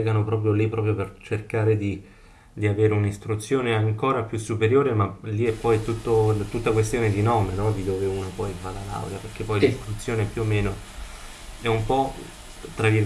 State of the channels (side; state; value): both; identical; correlation 1.00